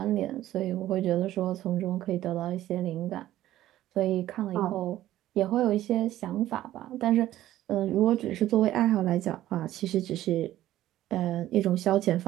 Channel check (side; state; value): left; quieter; 13.9 dB